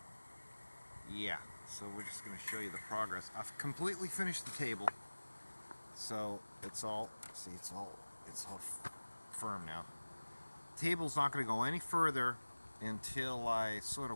yeah, so we're just going to show you the progress. I've completely finished the table, so it's all firm now. The table's not going to go any further until I sort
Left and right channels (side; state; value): both; inverted; correlation -1.00